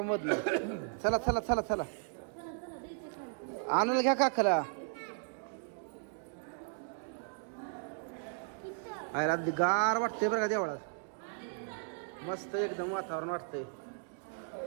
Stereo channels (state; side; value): silent; left; digital silence